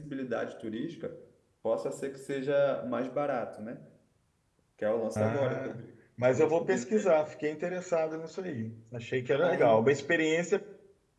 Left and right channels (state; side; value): identical; both; correlation 1.00